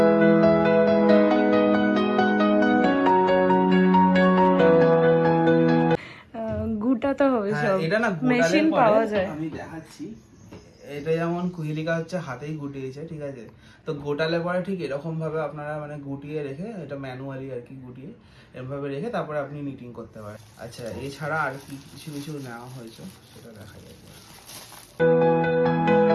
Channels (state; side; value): identical; both; correlation 1.00